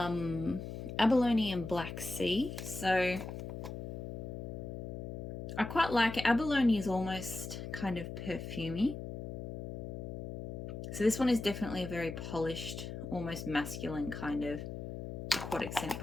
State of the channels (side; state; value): left; noise; hum, 7 dB below the sound